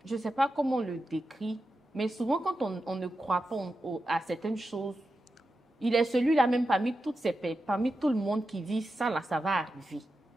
ne sais pas comment on le décrit, mais souvent quand on ne croit pas à certaines choses, il est celui-là même parmi parmi tout le monde qui dit ça là, ça va arriver.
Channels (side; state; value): both; normal; correlation 0.90